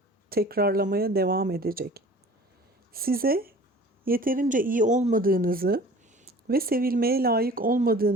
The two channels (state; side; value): normal; both; correlation 0.45